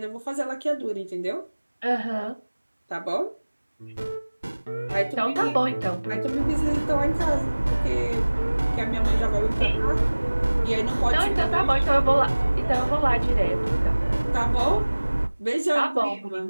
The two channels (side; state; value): both; inverted; correlation -1.00